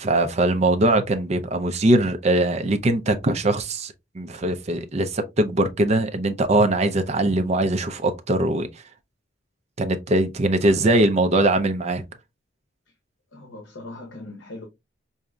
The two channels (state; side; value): normal; both; correlation 0.44